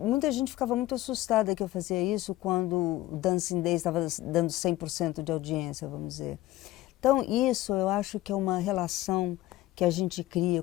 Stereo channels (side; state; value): right; quieter; 16.3 dB